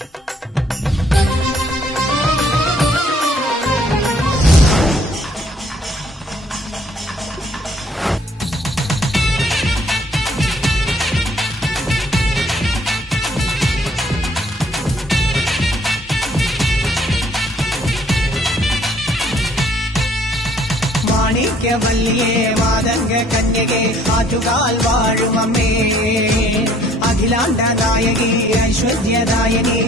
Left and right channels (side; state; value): both; normal; correlation 0.61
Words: മാണിക്യവല്ലിയേ മാതംഗ കന്യകേ ആറ്റുകാൽ വാഴുമമ്മേ അഖിലാണ്ട നായകി ഐശ്വര്യദായകി